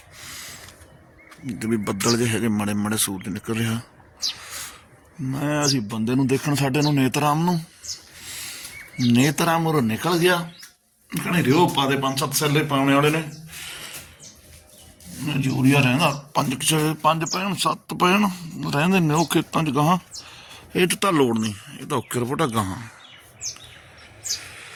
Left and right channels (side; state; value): both; identical; correlation 1.00